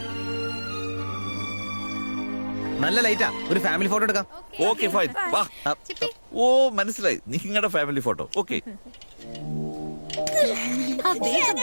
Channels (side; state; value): both; inverted; correlation -1.00